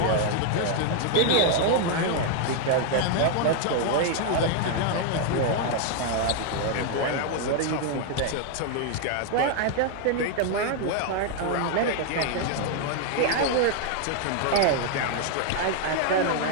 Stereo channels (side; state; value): both; different; correlation 0.00